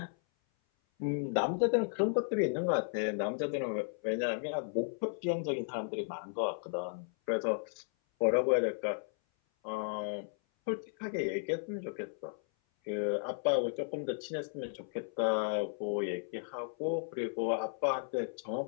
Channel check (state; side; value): silent; right; 55 dB below the other